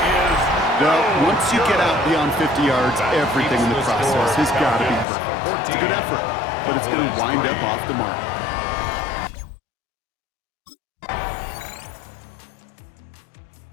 No, once you get out beyond 50 yards, everything in the process has got to be perfect. It's a good effort, but it's going to wind up off the mark.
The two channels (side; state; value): right; drops out; at 5.1 s